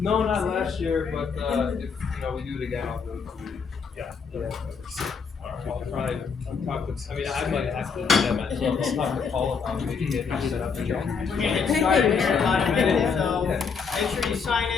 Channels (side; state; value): right; quieter; 5.7 dB